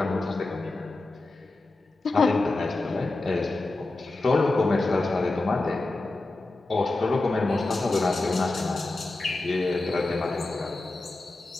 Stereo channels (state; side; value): quieter; right; 3.0 dB